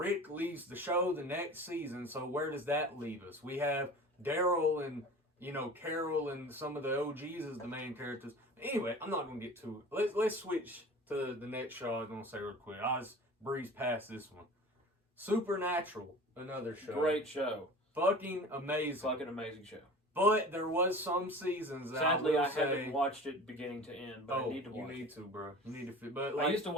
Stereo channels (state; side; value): normal; both; correlation 0.39